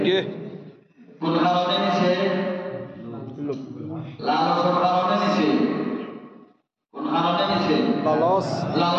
কোন কারণে নিছে লালসের কারণে নিছে কোন কারণে নিছে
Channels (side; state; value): both; identical; correlation 1.00